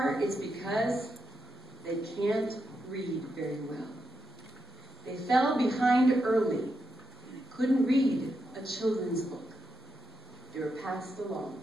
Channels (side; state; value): both; normal; correlation 0.84